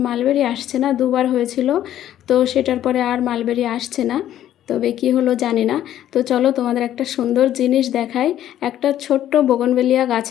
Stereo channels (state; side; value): quieter; right; 11.9 dB